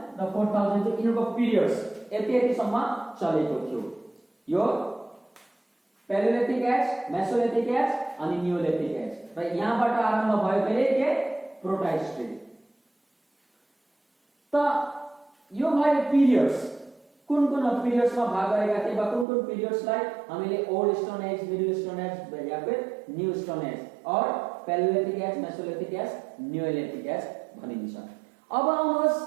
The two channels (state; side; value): drops out; left; at 19.2 s